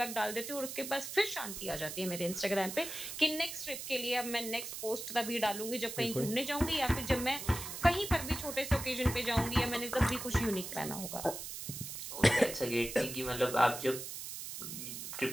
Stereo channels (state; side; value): noise; right; hiss, 7 dB below the sound